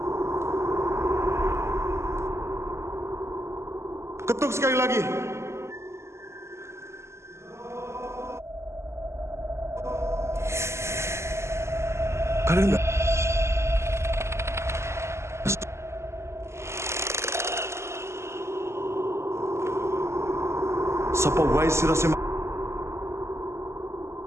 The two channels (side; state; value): left; late; 0.13 ms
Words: Ketuk sekali lagi. Kalian enggak? Sapa wae sira sing